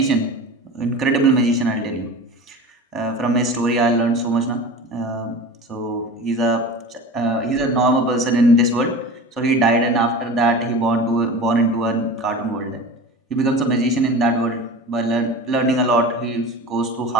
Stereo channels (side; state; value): both; normal; correlation 0.34